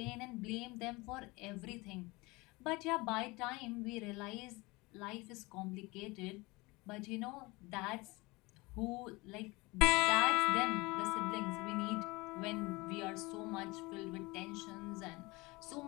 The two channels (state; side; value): quieter; right; 23.6 dB